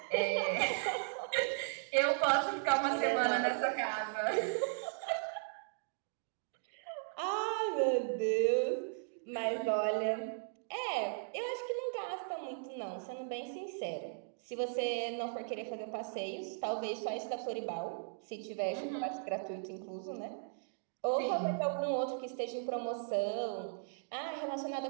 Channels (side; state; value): left; silent; digital silence